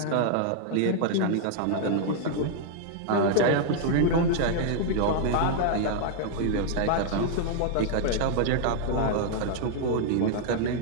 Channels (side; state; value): both; different; correlation 0.00